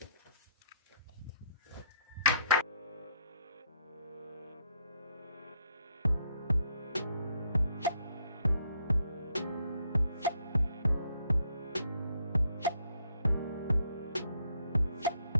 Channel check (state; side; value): inverted; both; correlation -0.72